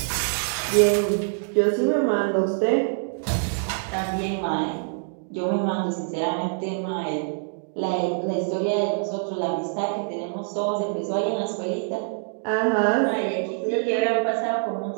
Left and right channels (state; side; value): silent; left; digital silence